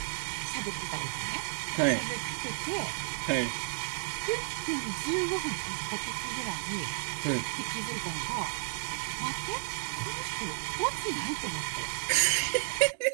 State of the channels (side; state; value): left; silent; digital silence